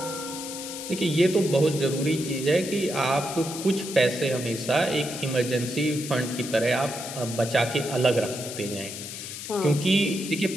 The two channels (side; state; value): left; noise; hiss, 9 dB below the sound